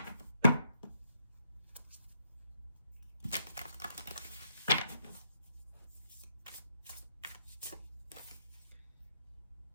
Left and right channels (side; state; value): both; inverted; correlation -0.76